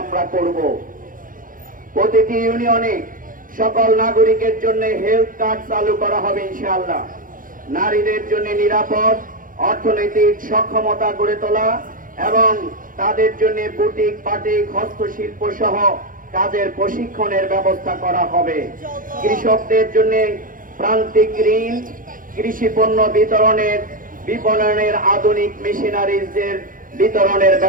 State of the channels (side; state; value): left; late; 0.40 ms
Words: আমরা করব। প্রতিটি ইউনিয়নে সকল নাগরিকের জন্য হেলথ কার্ড চালু করা হবে ইনশাআল্লাহ। নারীদের জন্য নিরাপদ অর্থনৈতিক সক্ষমতা গড়ে তোলা এবং তাদের জন্য বুটিক, বাটিক, হস্তশিল্প সহ কাজের প্রশিক্ষণের ব্যবস্থা করা হবে। কৃষকদের জন্য প্রান্তিক ঋণ, কৃষি পণ্য বিতরণের, বিপণনের আধুনিক মেশিনারিজের বিতরণের